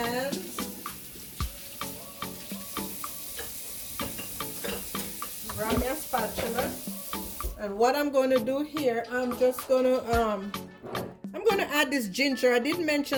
Grab me a spatula. And what I'm going to do here, I'm just going to add this ginger. I did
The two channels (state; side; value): identical; both; correlation 1.00